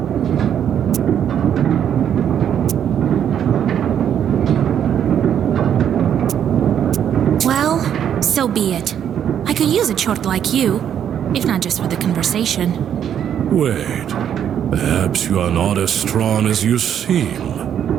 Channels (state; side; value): quieter; left; 9.3 dB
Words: Well, so be it. I could use a chort like you, if not just for the conversation. Wait, perhaps you are not as strong as you seem.